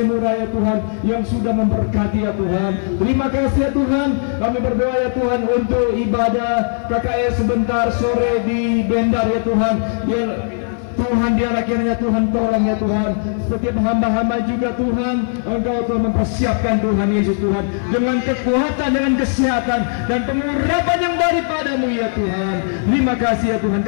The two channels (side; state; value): right; silent; 56 dB below the other